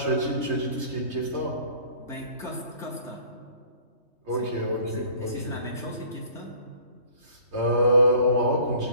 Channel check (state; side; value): late; left; 3.2 ms